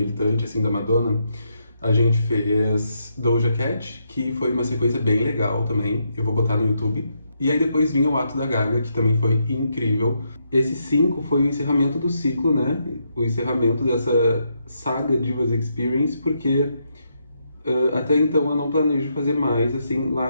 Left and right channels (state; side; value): inverted; both; correlation -0.80